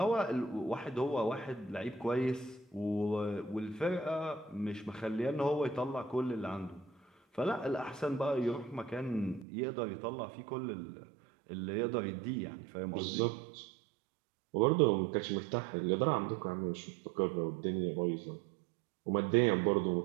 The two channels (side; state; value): left; drops out; at 9.5 s